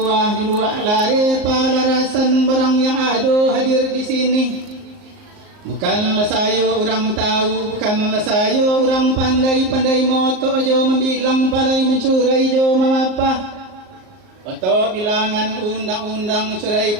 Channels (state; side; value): late; left; 38 ms